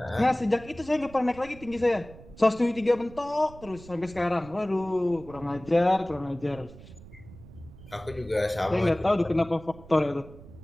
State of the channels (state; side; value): noise; right; rumble, 19 dB below the sound